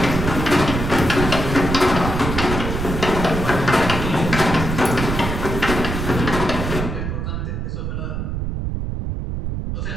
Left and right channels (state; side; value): noise; right; rumble, 3 dB below the sound